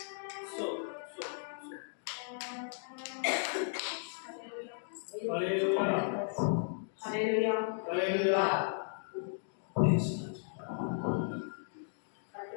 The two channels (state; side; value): silent; right; digital silence